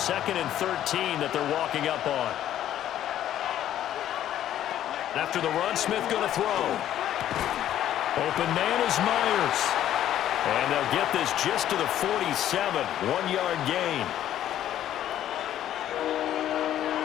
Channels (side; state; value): right; quieter; 11.7 dB